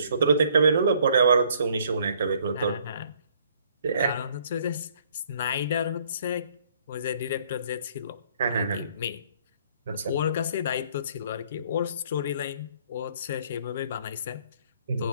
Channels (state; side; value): inverted; both; correlation -0.62